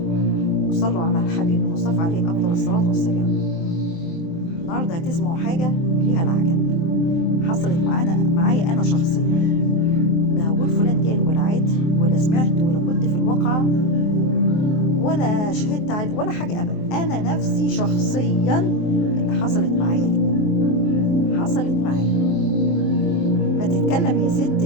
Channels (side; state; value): right; late; 24 ms